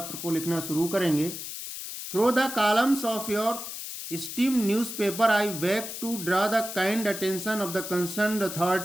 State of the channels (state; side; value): noise; left; hiss, 8 dB below the sound